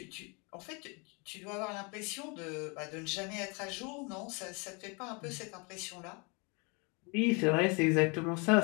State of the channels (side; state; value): right; quieter; 31.3 dB